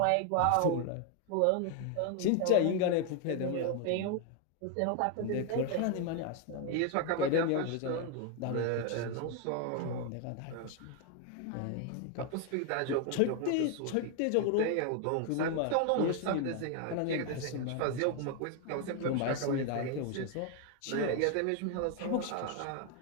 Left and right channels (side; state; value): both; different; correlation 0.01